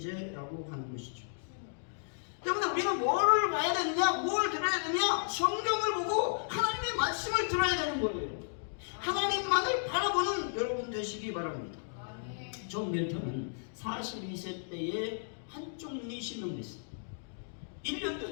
하는 것이죠. 때문에 우리는 뭐를 봐야 되느냐, 뭘 들어야 되느냐, 성경을 보고 하나님의 말씀을 들어야 되는 거예요. 하나님만을 바라보는 여러분 되시기 바랍니다. 존 밀턴은 42세 때에 한쪽 눈이 실명됐습니다. 1년 전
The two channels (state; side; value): silent; right; digital silence